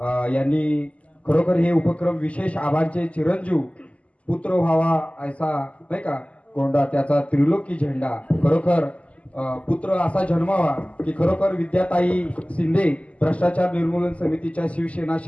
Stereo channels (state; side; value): late; right; 0.066 ms